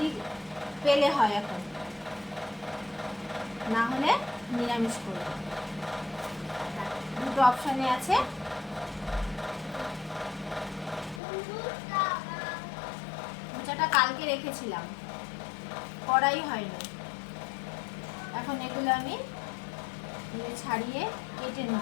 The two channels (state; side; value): drops out; right; at 11.2 s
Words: পেলে হয় এখন, না হলে নিরামিষ করব। দুটো অপশানে আছে। মোচাটা কালকে রেখেছিলাম, করাই হয়নি। এখন এগুলো আমি ছাড়িয়ে কেটে